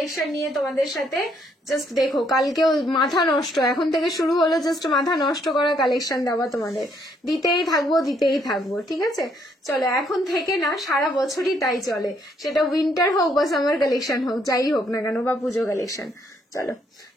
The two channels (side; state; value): both; normal; correlation 0.70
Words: নিয়ে তোমাদের সাথে। জাস্ট দেখো কালকেও মাথা নষ্ট, এখন থেকে শুরু হলো জাস্ট মাথা নষ্ট করা কালেকশন দেওয়া তোমাদের, দিতেই থাকবো। ঠিক আছে, চলো এখন থেকে না, সারা বছরই তাই চলে, সেটা উইন্টার হোক বা সামার কালেকশন হোক, যাই হোক না কেন, বা পুজো কালেকশন। চলো